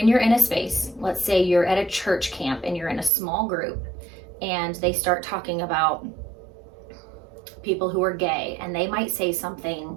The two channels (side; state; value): left; drops out; at 3.1 s